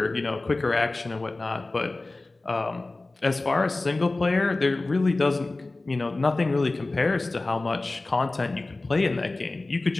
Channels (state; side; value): quieter; right; 3.1 dB